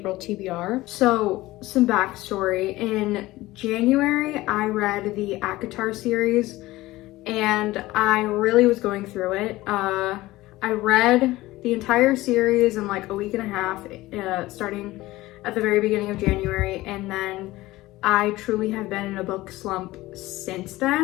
TBR. So, some backstory. In January, I read the ACOTAR series and I really was going through it. I read the entire series in like a week and a half, starting at the very beginning of January, and then I truly have been in a book slump since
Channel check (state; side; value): quieter; right; 18.1 dB